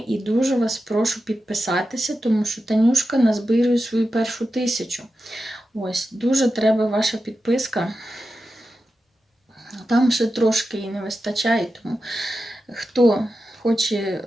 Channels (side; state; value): both; normal; correlation 0.91